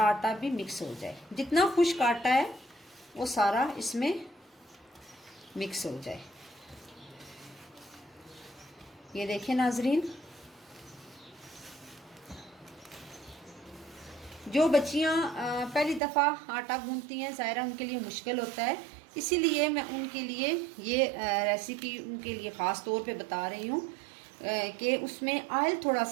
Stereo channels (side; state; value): left; drops out; at 16.0 s